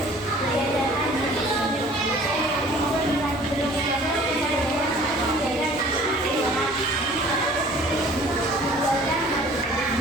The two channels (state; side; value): normal; both; correlation 0.51